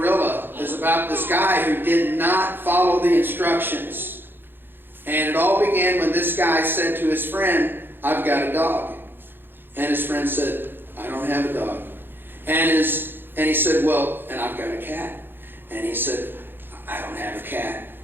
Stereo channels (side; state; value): left; late; 0.10 ms